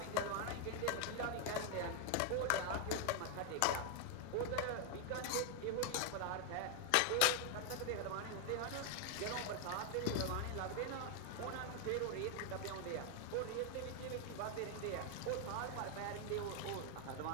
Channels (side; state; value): both; different; correlation 0.00